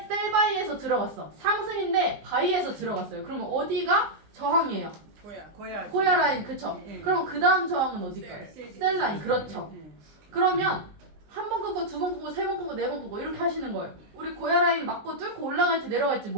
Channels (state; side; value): late; left; 19 ms